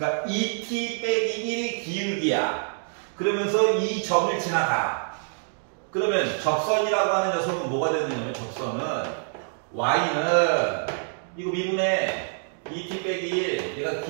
2t 빼기 1이 기울기야. 그러면서 이 점을 지나가. 그러면 접선이라고 하는 녀석은 뭐가 되느냐면 접선은 y는 이거 미분해 2t 빼기 1 얘가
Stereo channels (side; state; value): left; silent; digital silence